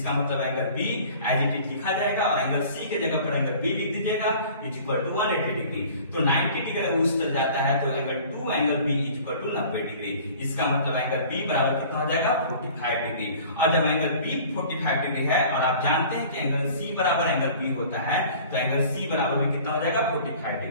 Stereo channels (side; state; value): both; inverted; correlation -0.47